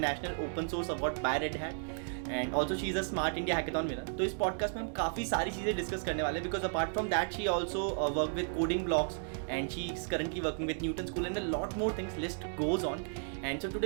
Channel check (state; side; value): silent; left; digital silence